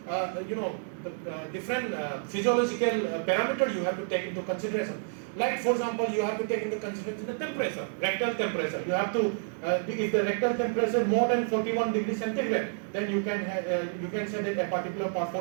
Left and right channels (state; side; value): silent; left; digital silence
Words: different physiological parameter you have to take into consideration. Like for example, you have to take into consideration the temperature, rectal temperature. You have to, if the rectal temperature is more than 41 degrees centigrade, then you can say that a particular part